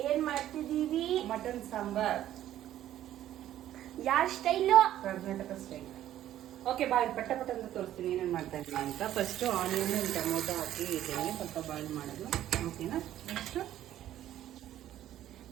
ಏನ್ ಮಾಡ್ತಿದೀವಿ? ಮಟನ್ ಸಾಂಬಾರ್. ಯಾರ ಸ್ಟೈಲು? ಕರ್ನಾಟಕ ಸ್ಟೈಲ್. ಓಕೆ, ಬಾಯ್ ಪಟ್ಟ ಪಟ್ಟ ಅಂತ ತೋರಿಸ್ತೀನಿ ಏನೇನು ಮಾಡ್ತಾ ಇದ್ದೀನಿ ಅಂತ. ಫಸ್ಟ್ ಆನಿಯನ್ ಟೊಮೊಟೊ ಹಾಕಿ ಇದ್ದೀನಿ, ಸ್ವಲ್ಪ ಬಾಯ್ಲ್ ಮಾಡೋದು. ಓಕೆನಾ? ನೆಕ್ಸ್ಟ್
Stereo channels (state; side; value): quieter; left; 12.4 dB